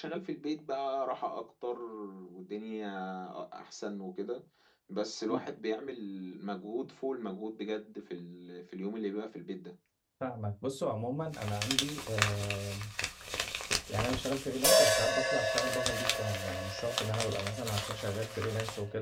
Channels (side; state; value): both; identical; correlation 1.00